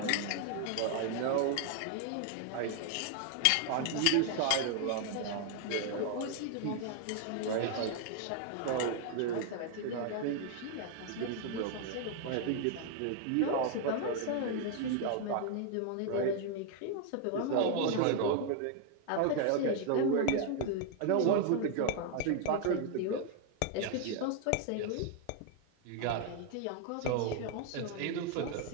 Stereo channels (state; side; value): different; both; correlation 0.00